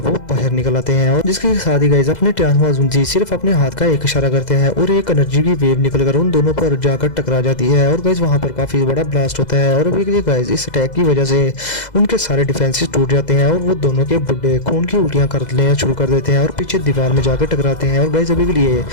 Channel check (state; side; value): late; right; 2.0 ms